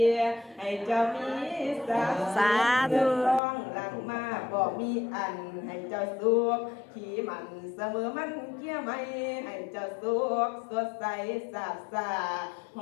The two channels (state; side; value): drops out; right; at 3.4 s